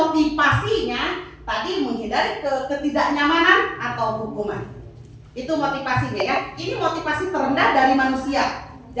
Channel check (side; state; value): both; identical; correlation 1.00